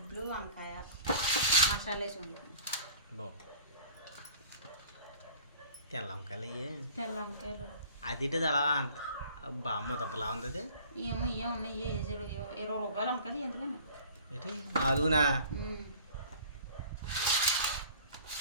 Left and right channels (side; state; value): both; inverted; correlation -0.47